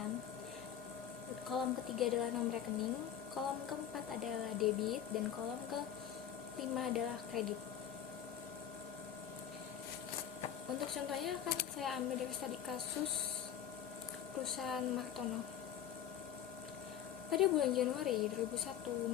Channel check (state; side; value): quieter; right; 9.6 dB